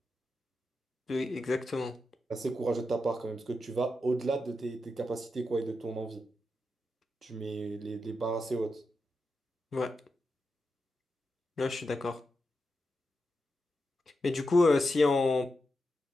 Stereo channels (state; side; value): normal; both; correlation 0.88